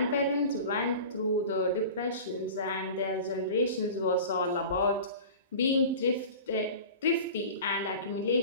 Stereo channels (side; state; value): both; inverted; correlation -0.37